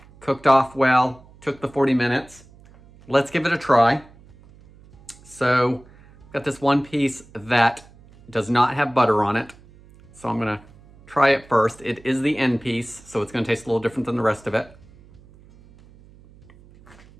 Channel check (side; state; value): right; noise; hum, 25 dB below the sound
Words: Cooked off well. Took the 40 minutes. Let's give it a try. So, got this one piece that does not have butter on it. So I'm gonna try it first. It is the end piece, so it's gonna taste a little different than the rest of it.